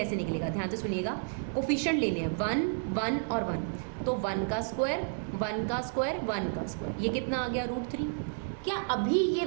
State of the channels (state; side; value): silent; left; digital silence